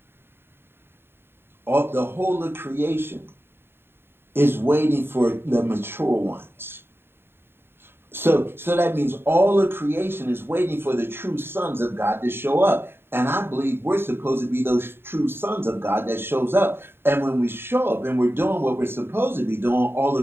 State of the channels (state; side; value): late; left; 0.11 ms